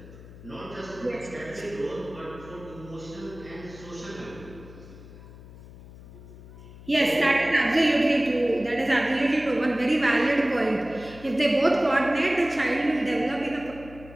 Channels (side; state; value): left; noise; hum, 18 dB below the sound